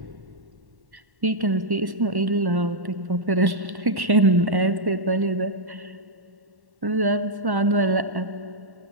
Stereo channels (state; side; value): late; left; 1.1 ms